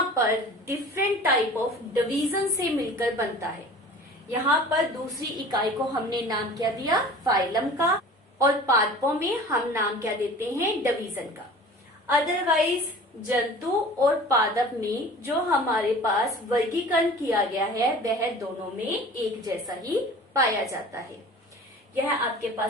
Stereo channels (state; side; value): normal; both; correlation 0.42